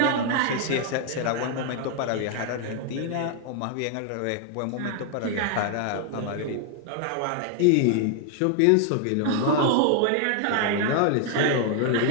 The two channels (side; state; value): both; different; correlation 0.00